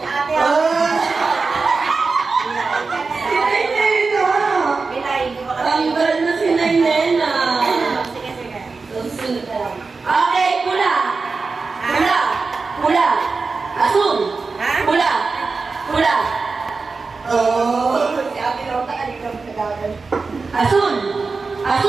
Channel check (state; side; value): quieter; left; 4.3 dB